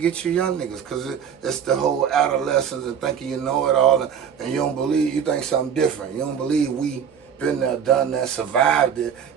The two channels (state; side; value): quieter; left; 7.9 dB